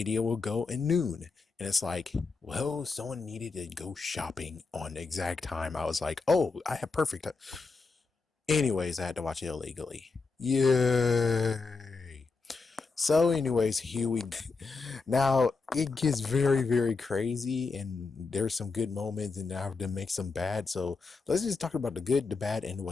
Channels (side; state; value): right; quieter; 4.3 dB